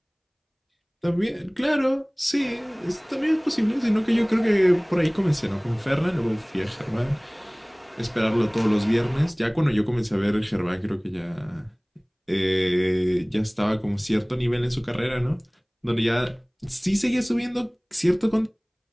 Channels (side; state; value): both; identical; correlation 1.00